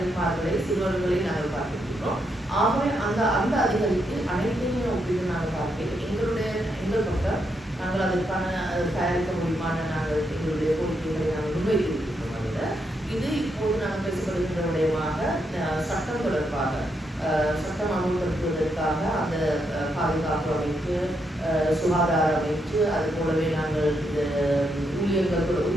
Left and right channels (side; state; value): both; normal; correlation 0.80